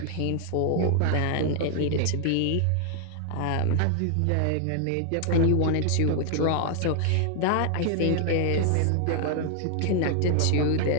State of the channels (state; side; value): different; both; correlation 0.00